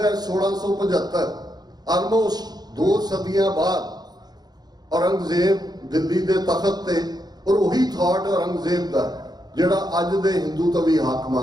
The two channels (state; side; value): late; left; 0.19 ms